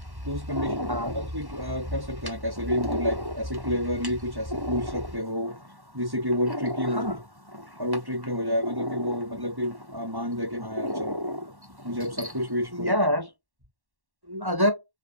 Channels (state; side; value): late; left; 1.1 ms